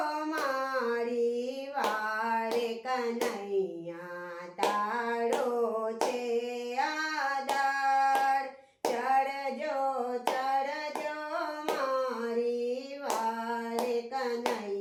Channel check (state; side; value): identical; both; correlation 1.00